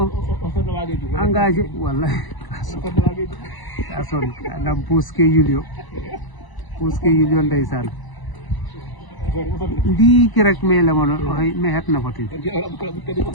engagé wallahi kason anam puske yulio ndaysan ndi ki rek me la mono me het na fatin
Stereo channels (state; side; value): late; right; 1.0 ms